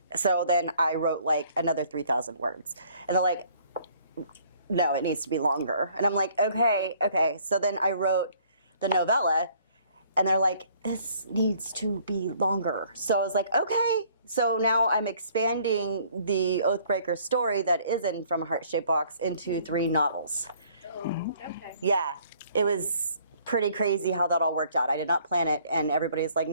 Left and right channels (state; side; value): inverted; both; correlation -0.59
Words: So then I wrote like another 3,000 words, and they're like, no, it needs to be longer. And I'm like, okay. So then I wrote the novella, and they're like, this needs to be longer. So I was like, okay. So now I'm expanding the Oathbreaker story that is in From a Heart-Shaped Box into 3 novels. Oh, okay. Yeah, it was pretty crazy how that all worked out. I did not plan it, and everybody's like,